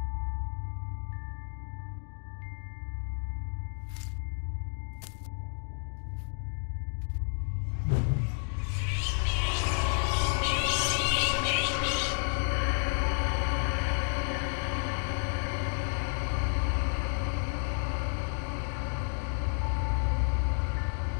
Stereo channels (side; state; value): right; silent; 57 dB below the other